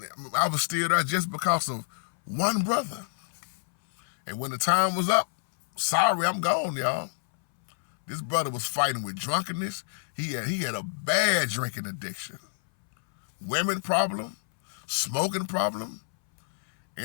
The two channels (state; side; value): silent; right; 60 dB below the other